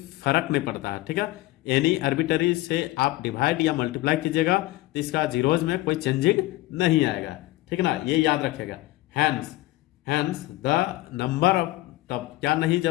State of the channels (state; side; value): quieter; right; 18.1 dB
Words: फर्क नहीं पड़ता है। ठीक है, एनी आर्बिट्ररी से आप डिवाइड या मल्टीप्लाई कीजिएगा तो इसका जीरोज में कोई चेंजिंग नहीं आएगा, ठीक है ना, ये याद रखेगा। हैंस द नंबर ऑफ, तब क्या नहीं,